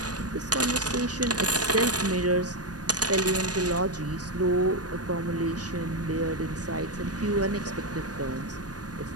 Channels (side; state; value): left; late; 0.68 ms